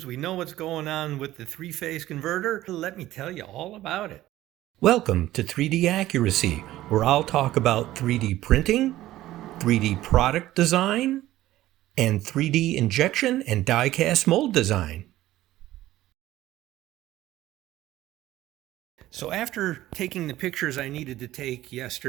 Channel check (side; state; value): left; quieter; 15.1 dB